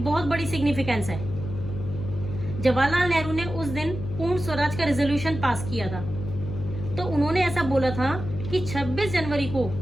बहुत बड़ी सिग्निफिकेंस है। जवाहरलाल नेहरू ने उस दिन पूर्ण स्वराज का रेजोल्यूशन पास किया था। तो उन्होंने ऐसा बोला था कि 26 जनवरी को,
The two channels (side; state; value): left; noise; hum, 7 dB below the sound